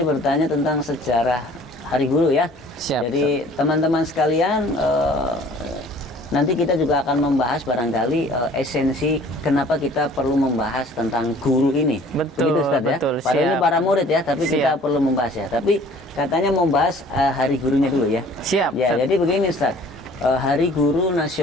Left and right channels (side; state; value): both; normal; correlation 0.51